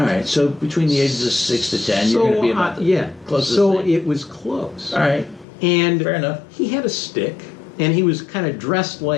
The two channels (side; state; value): right; drops out; at 5.5 s